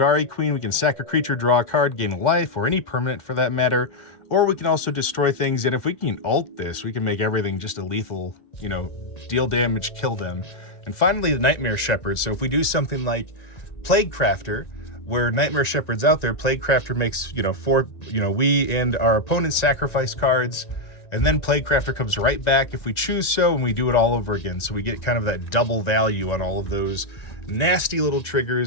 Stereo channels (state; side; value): late; right; 1.9 ms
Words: Queen, we can sack a creature, draw a card, gain a life, or any permanent for that matter. Or we can also destroy things, and if we can ult this, we can make everything just a lethal, deal damage, kill them. And finally, the Nightmare Shepherd. So if we do something like Plague Crafter, where Nightmare Shepherd's out there, Plague Crafter makes, we and our opponents sacrifice cards, and then Plague Crafter comes right back if we choose so, and we do it all over again. So we get kind of that double value on all of those nasty little